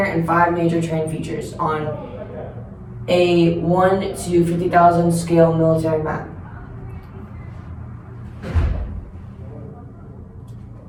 and 5 major terrain features on a 1 to 50,000 scale military map.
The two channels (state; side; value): identical; both; correlation 1.00